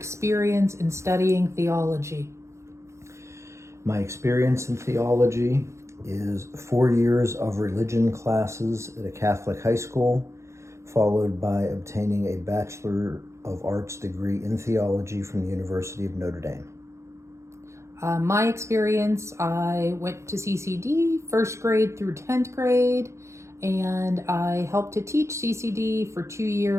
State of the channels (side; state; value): left; late; 0.14 ms